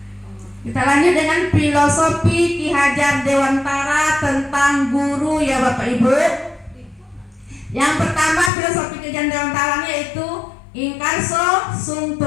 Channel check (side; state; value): right; drops out; at 8.5 s